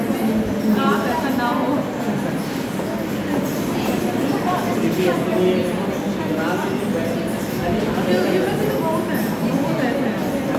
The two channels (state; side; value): identical; both; correlation 1.00